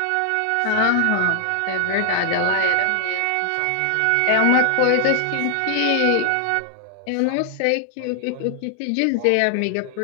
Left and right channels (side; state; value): both; different; correlation 0.00